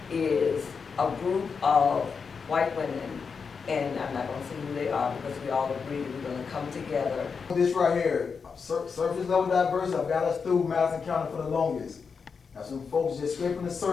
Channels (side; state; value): right; quieter; 5.6 dB